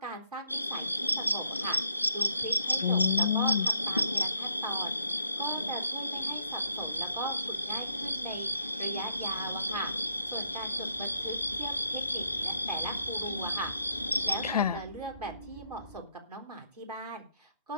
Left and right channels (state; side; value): inverted; both; correlation -0.71